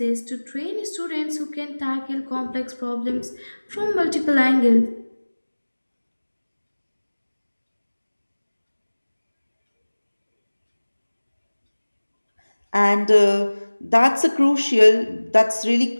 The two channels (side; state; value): both; inverted; correlation -1.00